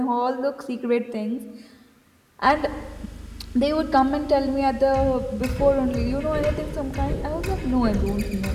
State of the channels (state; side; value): identical; both; correlation 1.00